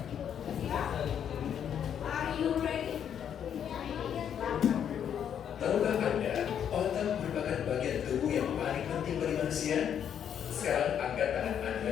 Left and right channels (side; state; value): right; quieter; 8.8 dB